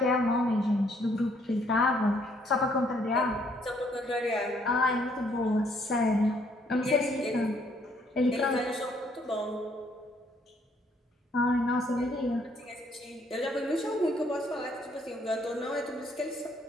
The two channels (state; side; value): normal; both; correlation 0.67